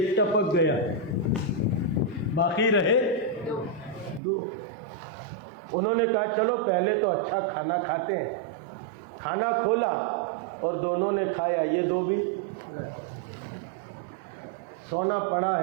ٹپک گیا، باقی رہے 2۔ انہوں نے کہا چلو پہلے تو اچھا کھانا کھاتے ہیں۔ کھانا کھولا اور دونوں نے کھایا، یہ 2 بھی سونا پڑا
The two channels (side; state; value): left; drops out; at 4.2 s